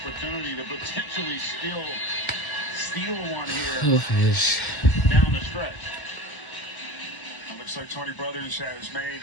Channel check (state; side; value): late; right; 1.1 ms